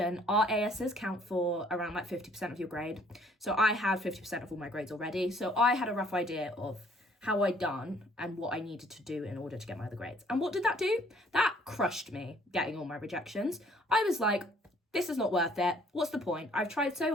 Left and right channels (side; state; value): both; normal; correlation 0.60